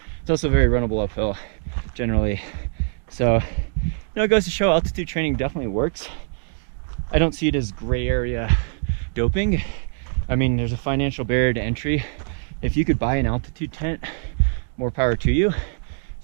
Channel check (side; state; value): left; silent; 58 dB below the other